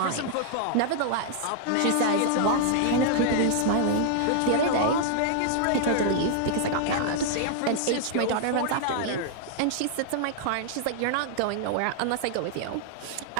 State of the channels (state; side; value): different; both; correlation -0.01